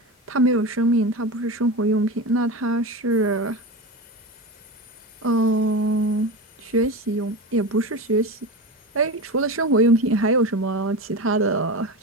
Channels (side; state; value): both; normal; correlation 0.24